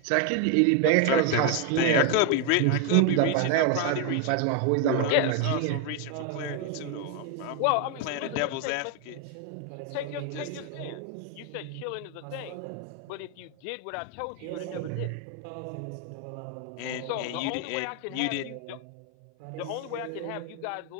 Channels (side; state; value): both; different; correlation 0.01